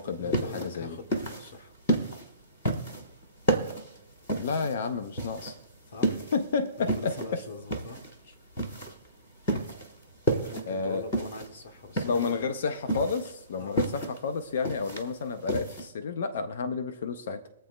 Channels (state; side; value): inverted; both; correlation -0.50